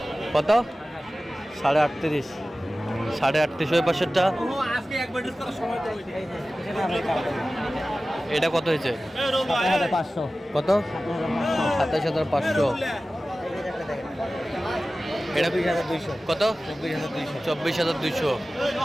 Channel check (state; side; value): normal; both; correlation 0.96